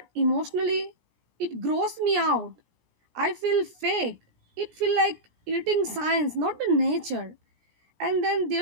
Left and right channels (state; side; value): late; left; 17 ms